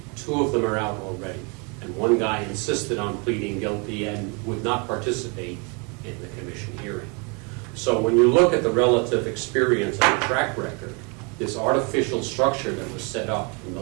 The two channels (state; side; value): quieter; left; 32.6 dB